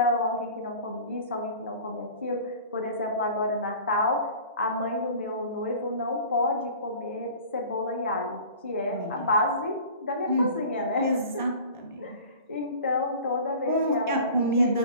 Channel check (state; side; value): inverted; both; correlation -0.42